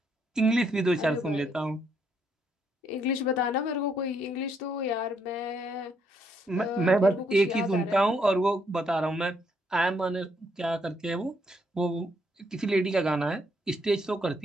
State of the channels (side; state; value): both; normal; correlation 0.73